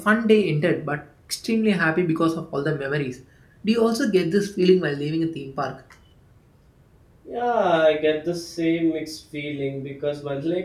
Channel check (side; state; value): both; identical; correlation 1.00